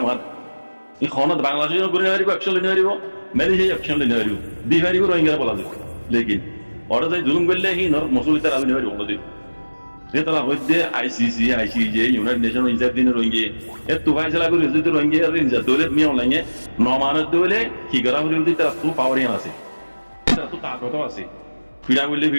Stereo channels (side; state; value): both; inverted; correlation -1.00